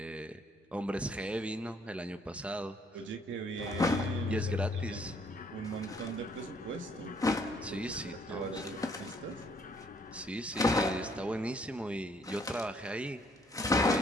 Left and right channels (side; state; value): both; normal; correlation 0.65